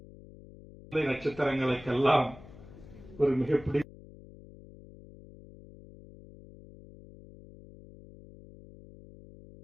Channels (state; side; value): noise; left; hum, 19 dB below the sound